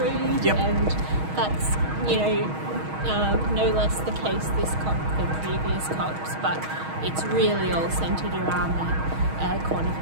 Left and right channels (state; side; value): late; left; 6.3 ms